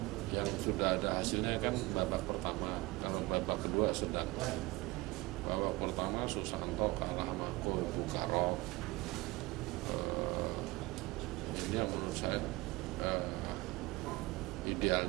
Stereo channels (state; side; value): quieter; left; 21.5 dB